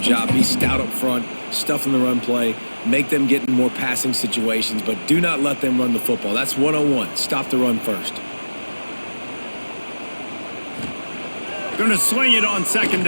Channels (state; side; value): inverted; both; correlation -1.00